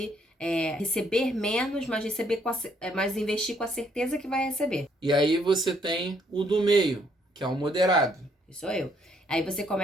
receber menos, mas investir com a certeza que vai receber. E aí você tem o do meio, que é o moderado. Isso sou eu. Aí você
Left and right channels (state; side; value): normal; both; correlation 0.69